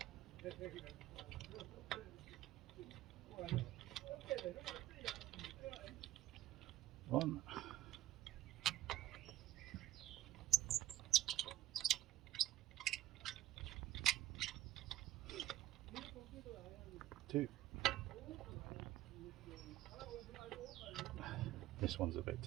One, two. This one's a bit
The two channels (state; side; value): quieter; left; 14.0 dB